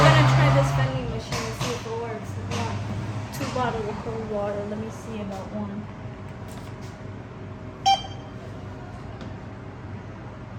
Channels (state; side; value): identical; both; correlation 1.00